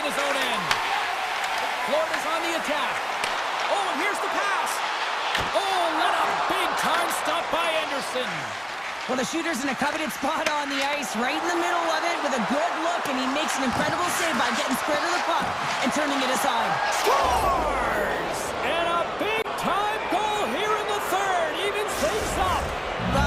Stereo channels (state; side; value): identical; both; correlation 1.00